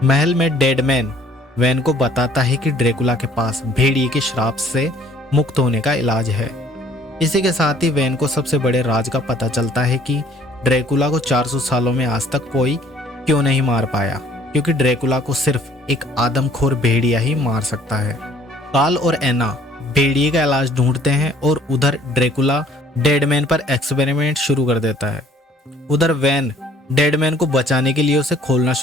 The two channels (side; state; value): both; normal; correlation 0.58